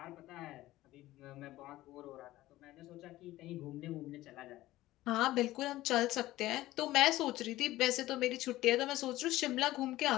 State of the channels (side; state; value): right; quieter; 16.3 dB